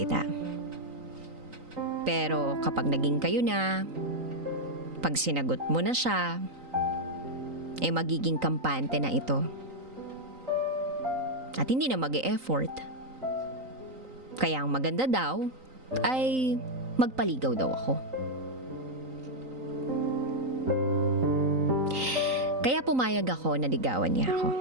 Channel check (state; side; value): late; left; 3.9 ms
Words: Pero kapag naging kayo na, pag sinagot mo na siya, magiging kampante na ito. At hindi na mag-e-effort. Kaya ang maganda daw ay magpaligaw daw ako. Kaya pumayag ako na ligawan niya ako.